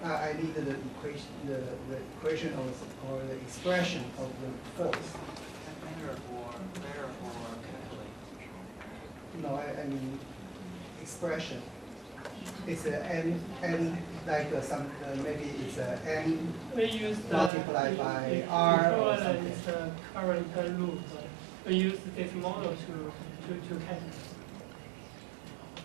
I need the equation or the expression of the force. No, I mean expression. It's a n like maybe it's a n multiplied by r or something. It's a current loop. We use this model to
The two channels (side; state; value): left; drops out; at 17.5 s